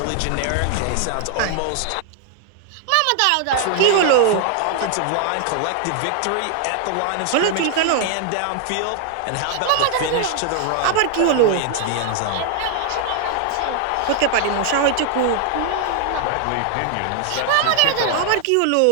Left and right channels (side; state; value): both; different; correlation 0.00